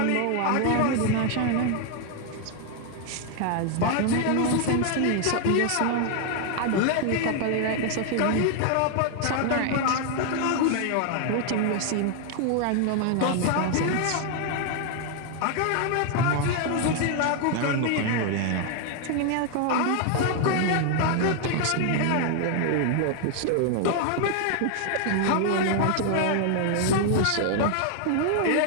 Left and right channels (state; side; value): different; both; correlation 0.00